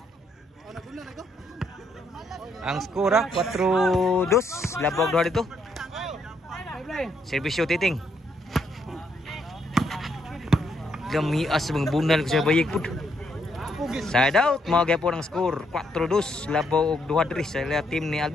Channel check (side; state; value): both; normal; correlation 0.74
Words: Ang skora 4-2. Labaw doon dito. Serbisyo titing. Gamias mga bunal ko sa bayik po. Side out. Mga po ng score 4-2. Labaw og 2-3 sa team ni